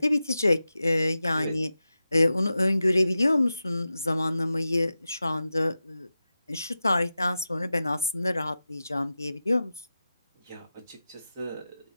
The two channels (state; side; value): inverted; both; correlation -0.93